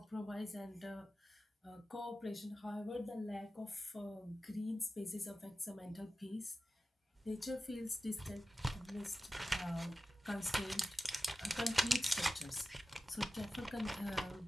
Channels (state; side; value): normal; both; correlation 0.94